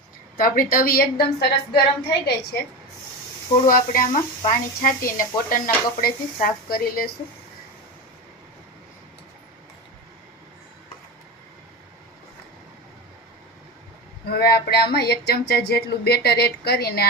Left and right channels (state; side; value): normal; both; correlation 0.22